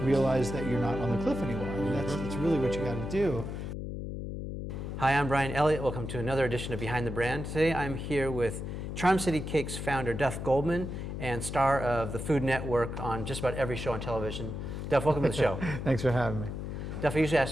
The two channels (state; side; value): noise; left; hum, 6 dB below the sound